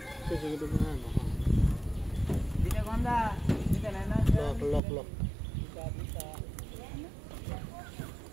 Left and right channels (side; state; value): left; drops out; at 4.8 s